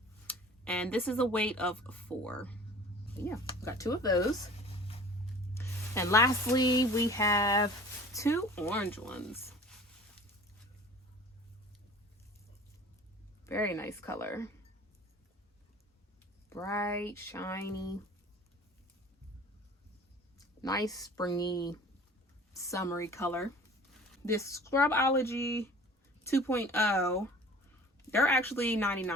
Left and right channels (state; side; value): normal; both; correlation 0.45